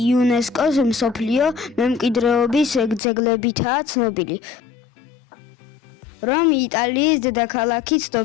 იუნესკოს მსოფლიო მემკვიდრეობის ძეგლებითაა ცნობილი. რომი იტალიის დედაქალაქი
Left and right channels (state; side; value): drops out; right; at 3.0 s